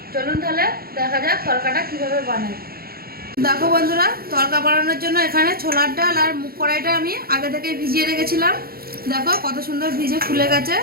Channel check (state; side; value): late; left; 0.44 ms